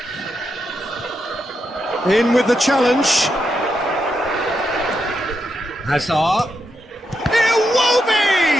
In with the challenge. Hazard. It will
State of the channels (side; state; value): both; normal; correlation 0.84